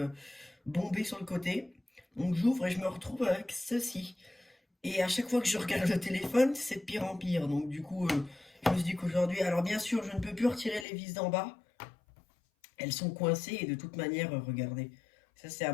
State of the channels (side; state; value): right; drops out; at 10.9 s